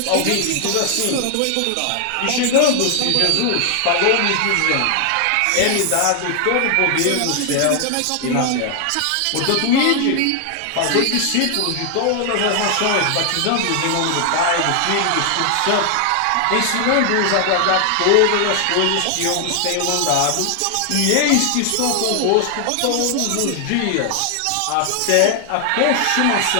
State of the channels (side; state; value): both; different; correlation 0.00